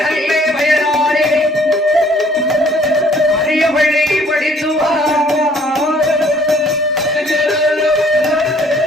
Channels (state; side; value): normal; both; correlation 0.59